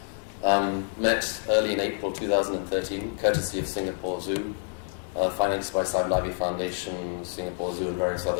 met early in April 2013, courtesy of Singapore Zoo, financed by Saib Nabi Foundation, Singapore Zoo and various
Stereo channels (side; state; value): right; silent; 60 dB below the other